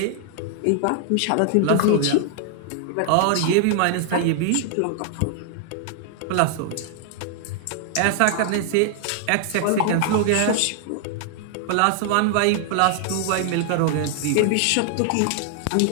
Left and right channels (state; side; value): different; both; correlation 0.00